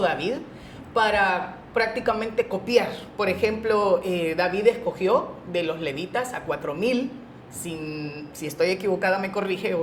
David para prácticamente copiar. Por ejemplo, David escogió de los levitas a 4,000. Si estoy equivocada me corrige,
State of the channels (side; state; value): both; identical; correlation 1.00